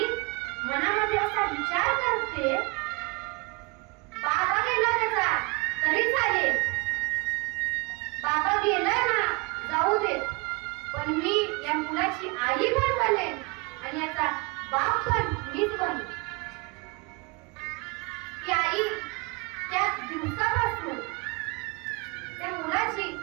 मनामध्ये असा विचार करते, बाबा गेला त्याचा तरी चालेल, बाबा गेला ना जाऊ दे, पण मी या मुलाची आई पण बनेन आणि याचा बाप पण मीच बनू. ती आई त्या दिवसापासून त्या मुलाची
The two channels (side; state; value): left; quieter; 28.3 dB